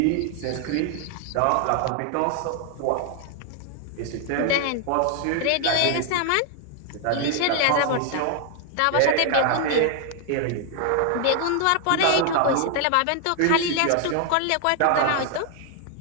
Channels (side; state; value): both; different; correlation 0.00